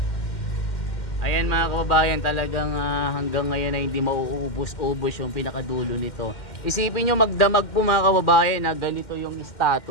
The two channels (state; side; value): late; right; 2.1 ms